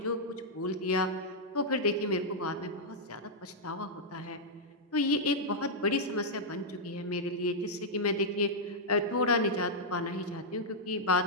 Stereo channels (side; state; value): both; normal; correlation -0.07